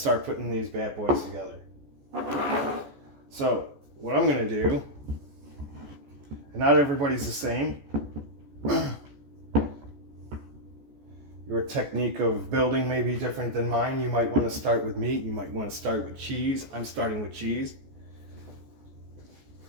putting these bad boys together. So, what I'm going to do, and not everybody's the same. Your technique of building may be different than mine. You might want to start with meat. You might want to start with cheese. I'm starting with cheese.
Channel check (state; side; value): late; left; 14 ms